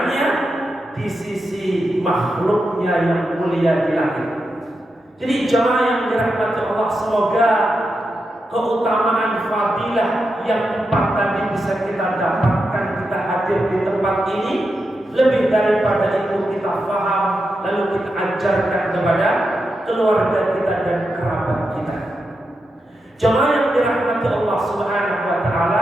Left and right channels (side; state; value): both; normal; correlation 0.87